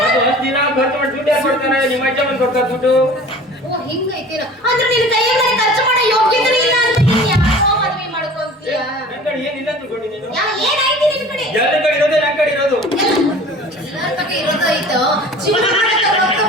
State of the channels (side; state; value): both; normal; correlation 0.43